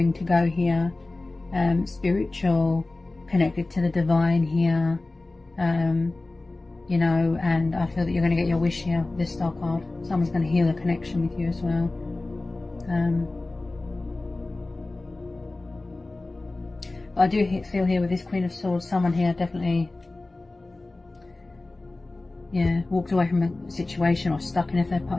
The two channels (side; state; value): right; quieter; 3.1 dB